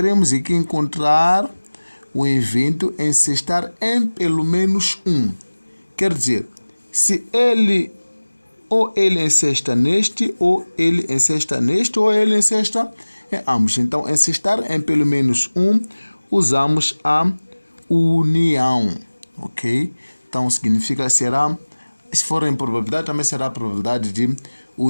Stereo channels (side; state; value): both; inverted; correlation -1.00